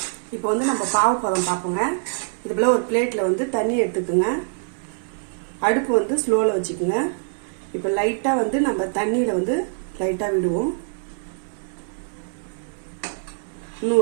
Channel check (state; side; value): silent; left; 63 dB below the other